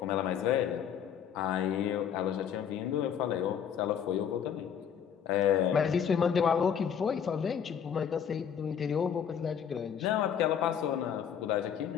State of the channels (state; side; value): quieter; right; 8.2 dB